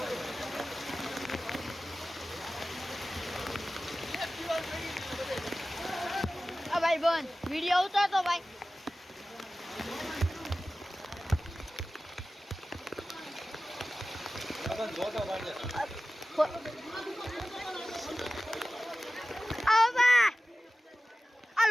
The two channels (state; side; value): normal; both; correlation 0.96